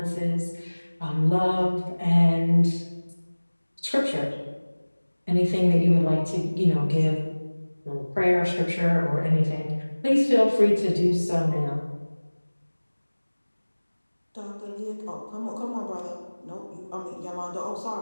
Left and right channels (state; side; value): inverted; both; correlation -1.00